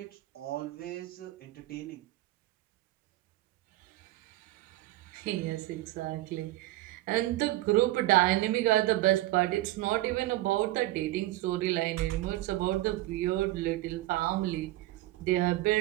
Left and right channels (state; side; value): quieter; left; 17.0 dB